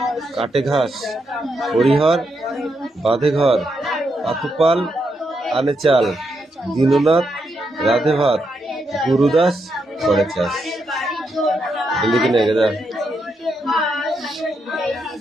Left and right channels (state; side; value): normal; both; correlation 0.81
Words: কাটে ঘাস হরিহর বাঁধে ঘর পাতুপাল আনে চাল দীননাথ রাধে ভাত গুরুদাস করে চাষ লিখে নে গেদা